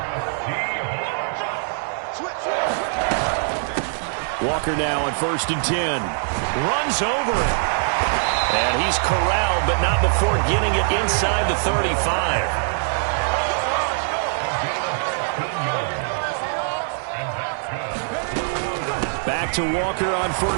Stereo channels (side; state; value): left; silent; 64 dB below the other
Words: Walker now on 1st and 10. Runs over it. And he's corralled, but not before getting it inside the 35. Back to Walker on